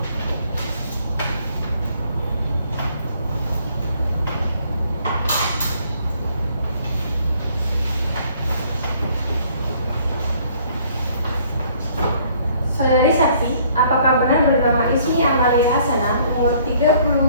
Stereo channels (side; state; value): both; inverted; correlation -0.61